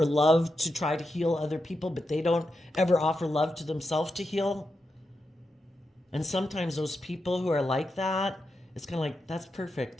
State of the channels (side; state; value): both; normal; correlation 0.87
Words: love to try to heal other people, but they don't ever offer love to themselves to heal? And sometimes those people who are like that, it's kind of like, that's